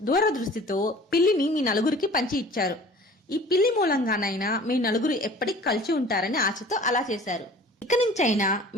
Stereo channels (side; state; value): both; normal; correlation 0.46